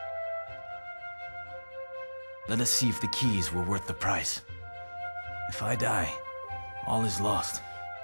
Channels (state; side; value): inverted; both; correlation -1.00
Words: Let us see if the keys were worth the price. If I die, all is lost.